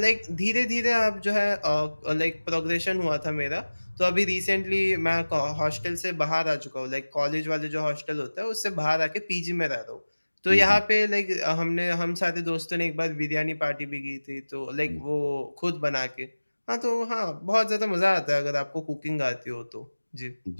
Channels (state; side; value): inverted; both; correlation -1.00